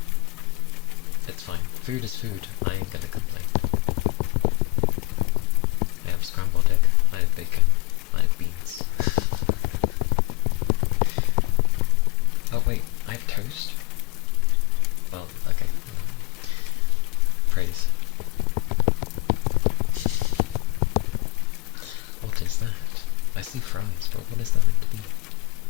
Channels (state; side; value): quieter; right; 23.6 dB